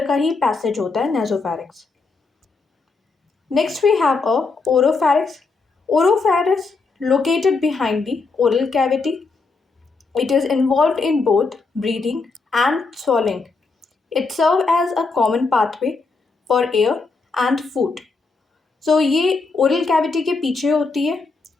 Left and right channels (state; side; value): quieter; right; 4.1 dB